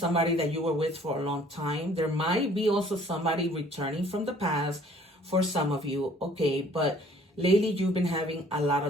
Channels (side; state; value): both; normal; correlation 0.56